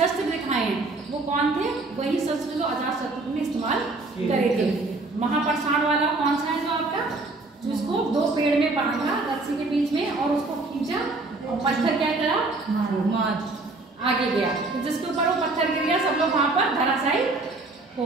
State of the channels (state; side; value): quieter; left; 3.3 dB